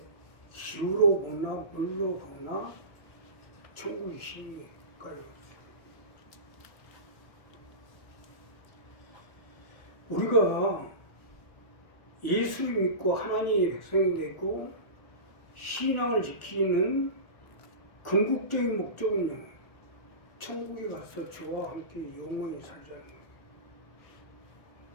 기후로 보나 물로 보나 천국이 심각해요. 우리가 예수를 믿고 하나님의 백성이 되고 신앙을 지키는 궁극적인 목적은요, 천국에 가서 주와 함께 영원히 살자는 거예요.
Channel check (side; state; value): right; late; 1.4 ms